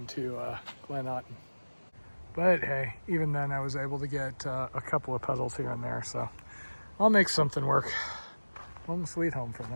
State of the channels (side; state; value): both; inverted; correlation -1.00